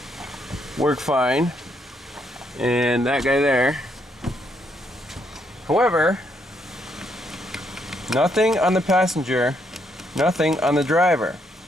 work fine, and that guy there. However, nothing on the passenger, nothing on the driver.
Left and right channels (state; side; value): normal; both; correlation 0.74